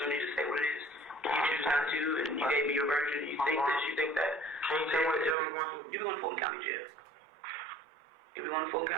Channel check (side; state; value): left; drops out; at 5.4 s